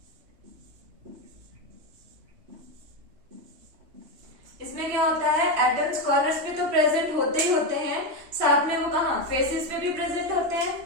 इसमें क्या होता है, atoms corners पे तो present होते ही होते हैं, साथ में वो कहां फेसेस पे भी प्रेजेंट होते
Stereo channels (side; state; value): left; late; 3.0 ms